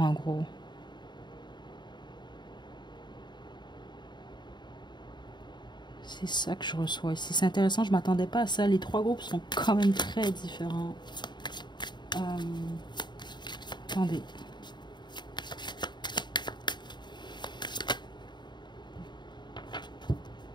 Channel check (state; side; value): late; right; 0.22 ms